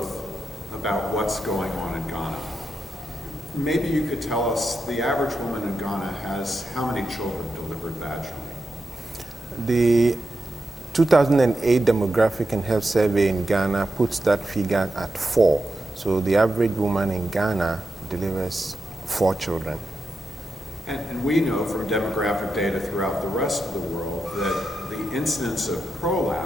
about what's going on in Ghana. Maybe you could tell us, the average woman in Ghana has how many children delivered vaginally? The 2008 Demographic and Health Survey in Ghana puts that figure at 4. So the average woman in Ghana delivers 4 children. And we know from demographic data throughout the rest of the world that the incidence of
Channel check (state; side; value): normal; both; correlation 0.88